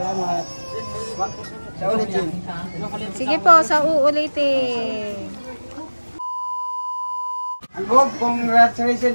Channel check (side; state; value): both; inverted; correlation -1.00